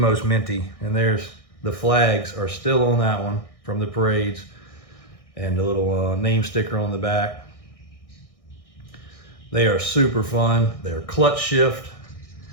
minty. And there's the flags are still on that one from the parades, and the little name sticker on the back. They are super fun. They're clutch shift.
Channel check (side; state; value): right; late; 1.6 ms